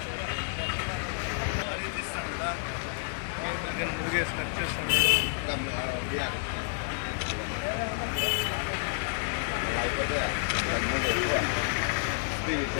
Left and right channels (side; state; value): right; silent; digital silence